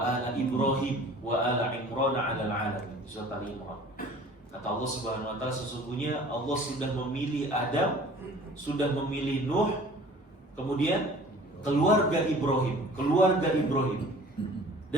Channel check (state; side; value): normal; both; correlation 0.47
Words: ala Ibrahim wa ala Imran 'alal 'alamin. Surat Al-Imran. Kata Allah Subhanahu wa taala, sesungguhnya Allah sudah memilih Adam, sudah memilih Nuh, kemudian keluarga Ibrahim